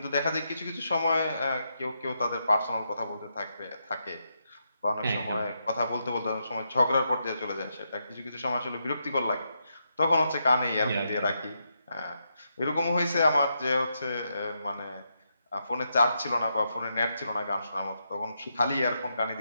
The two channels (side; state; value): both; inverted; correlation -0.82